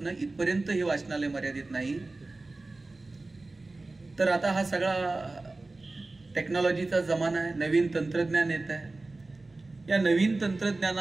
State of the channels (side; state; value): left; quieter; 3.2 dB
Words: इथपर्यंत हे वाचनालय मर्यादित नाही. तर आता हा सगळा टेक्नॉलॉजीचा जमाना आहे. नवीन तंत्रज्ञान येत आहे. या नवीन